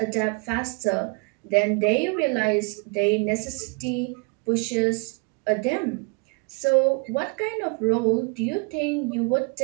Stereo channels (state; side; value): quieter; left; 32.5 dB